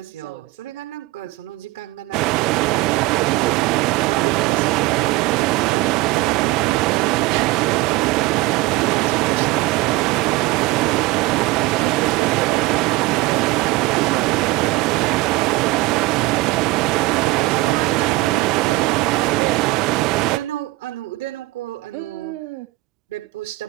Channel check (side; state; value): left; quieter; 19.9 dB